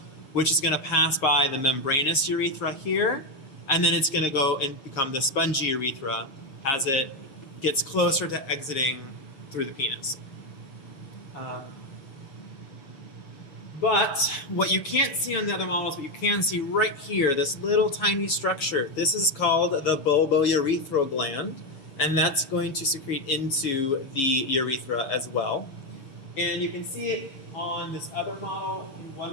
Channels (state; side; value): late; right; 7.3 ms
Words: which is going to pass by the membranous urethra here, and then it's going to go and become the spongy urethra as it gets closer to exiting through the penis. But what you can't see on the other models, but you can see right here, this little tiny structure, this is called the bulbourethral gland, and that's going to secrete into the urethra as well. And you can see it on this other model in